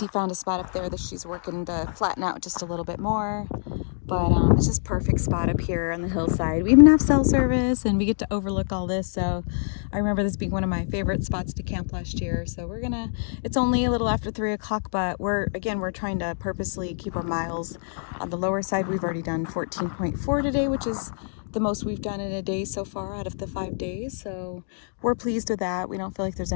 found a spot up there that she's working to flatten out just a little bit more. But it's just perfect spot up here on the hillside. We even have cell service and we get to overlook all this. So I remember this being one of my favorite spots to camp last year. So it's only a little after 3 o'clock, but we're trying to purposely keep our miles on the lower side. We've already done 14.4 today, which is the most we've done in a day so far out of the 5 days. So we're pleased with that. We don't feel like there's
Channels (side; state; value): right; silent; digital silence